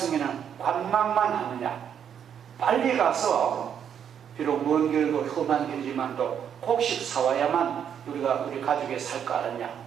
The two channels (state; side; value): quieter; left; 8.5 dB